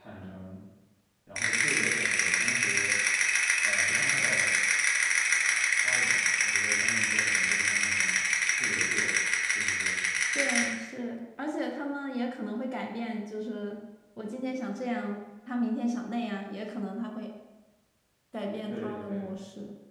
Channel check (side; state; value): both; identical; correlation 1.00